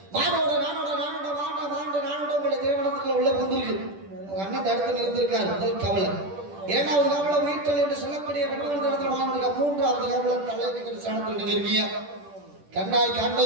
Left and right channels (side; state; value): left; late; 10 ms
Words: மானோட நானோட நானோட வாண்ட வாண்ட நானோட உங்களை திருமணத்துக்குள்ள உள்ள புந்திருக்கு. உங்க அண்ணன் தடுத்து நிறுத்திருக்காரு. முதல் கவலை. இரண்டாவது கவலை உயிர்த்தல் என்று சொல்லக்கூடிய பெண்கள் இடத்துல வாழ்ந்துருக்கா. மூன்றாவது கவலை தலைவர் ஸ்தானத்தில் நீங்க இருக்கீங்க. கண்ணால்